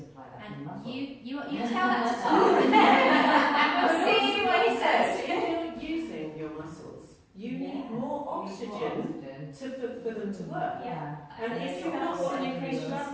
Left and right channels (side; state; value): both; identical; correlation 1.00